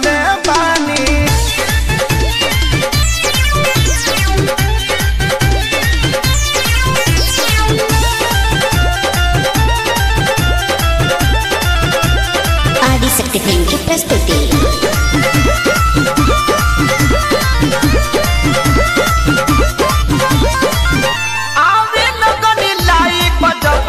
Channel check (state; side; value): identical; both; correlation 1.00